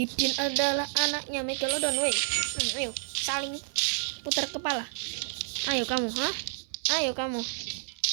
adalah anaknya Megalodon. Ayo saling putar kepala. Ayo kamu, Ayo kamu.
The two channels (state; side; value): silent; left; 58 dB below the other